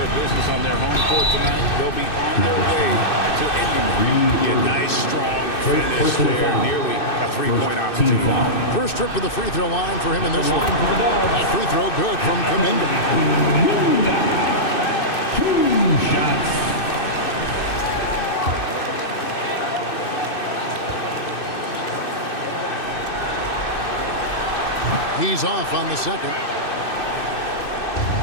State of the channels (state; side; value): late; right; 2.6 ms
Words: of business on their home court tonight, they'll be on their way to ending it. Yeah, nice, strong finish there, nearly a three-point opportunity. First trip to the free throw line for him in this one. That free throw good from Kuminga. 2 shots. He's off on the second.